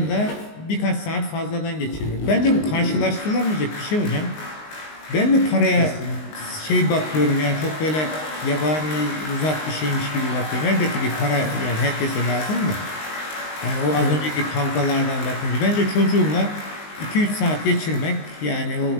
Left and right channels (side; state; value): right; late; 19 ms